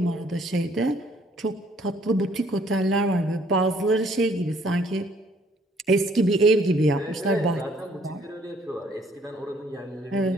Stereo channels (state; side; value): normal; both; correlation 0.63